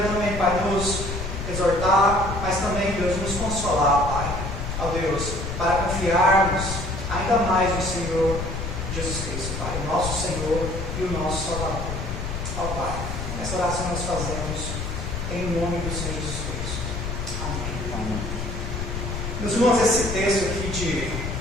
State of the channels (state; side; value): noise; left; rumble, 5 dB below the sound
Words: também, Pai, nos exortar, mas também, Deus, nos consolar, Pai. Ó Deus, para confiarmos ainda mais no Senhor Jesus Cristo, Pai, o nosso Senhor e o nosso Salvador. Ó Pai, essa oração nós fazemos em nome do Senhor Jesus Cristo. Amém. Meus irmãos, esse texto aqui